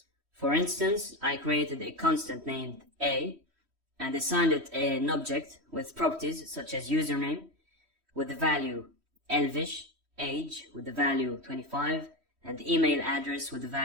For instance, I created a constant named A and assigned it an object with properties such as username with the value Elvish, age with the value 25, and email address with the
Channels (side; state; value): left; late; 3.1 ms